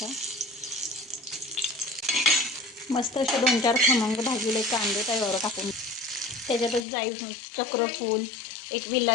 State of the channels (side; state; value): right; drops out; at 6.8 s